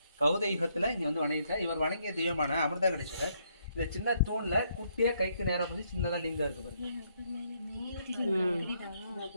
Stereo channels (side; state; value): both; inverted; correlation -0.73